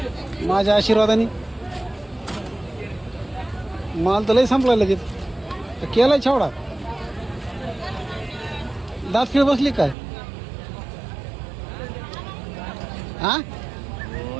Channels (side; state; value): left; drops out; at 10.0 s